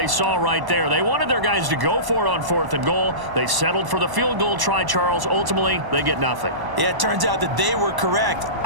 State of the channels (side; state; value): left; late; 1.0 ms